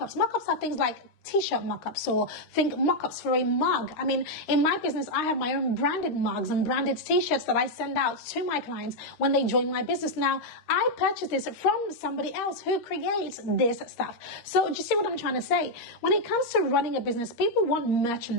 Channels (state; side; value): late; right; 13 ms